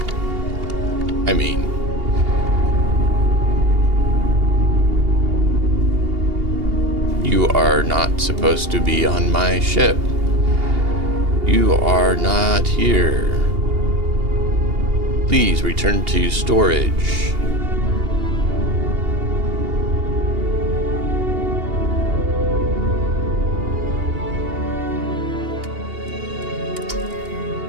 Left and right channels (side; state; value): left; late; 2.8 ms